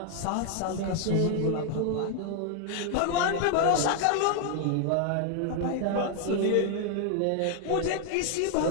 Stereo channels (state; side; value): different; both; correlation 0.00